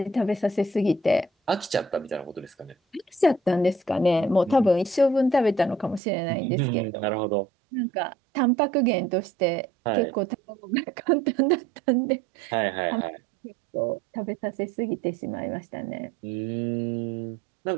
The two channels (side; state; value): left; drops out; at 6.0 s